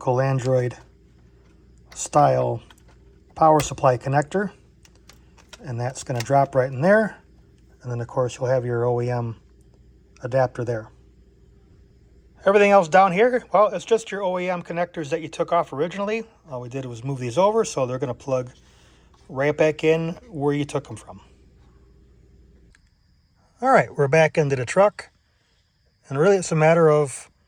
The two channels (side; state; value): both; identical; correlation 1.00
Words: Android style power supply connector. And that's going to drop right in there. And then, of course, you'll have your OEM adapter there. Everything else down here, well, it's just your OEM connectors that you took off originally. All we did was move these over, so they're going to plug right back in where you took them from. All right, we're back into the truck. And really, it's a matter of